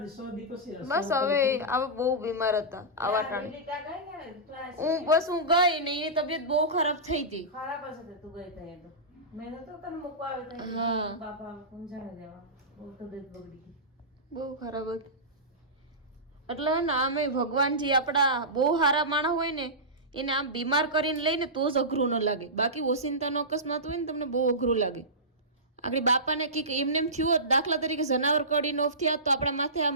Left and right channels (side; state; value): both; normal; correlation -0.18